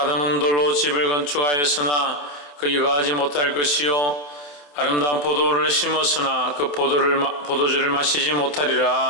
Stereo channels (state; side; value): late; right; 27 ms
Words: 돌로 집을 건축하였으나 거기 거하지 못할 것이요 아름다운 포도를 심었으나 그 포도주를 마시지